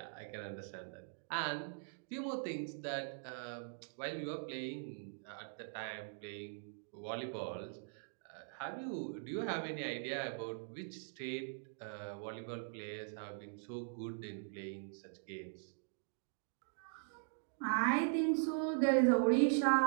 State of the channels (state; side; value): silent; left; digital silence